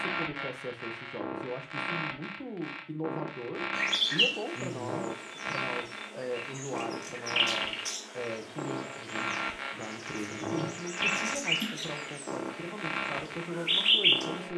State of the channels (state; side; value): identical; both; correlation 1.00